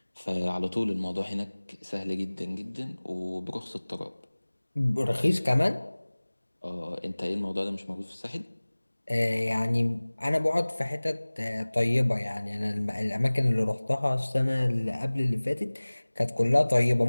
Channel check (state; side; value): inverted; both; correlation -1.00